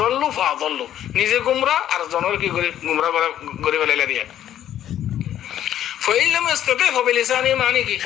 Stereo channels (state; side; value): quieter; right; 11.3 dB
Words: ফাদল্লু নিজে গুমরা আর জনর কি করে গুমরা করে ফেলাইলা দিয়া ফাইল লাম ইস্তাতি'উ ফাবিলিসানি মানে কি